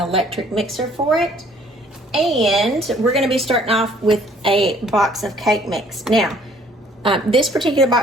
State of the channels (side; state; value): both; normal; correlation 0.59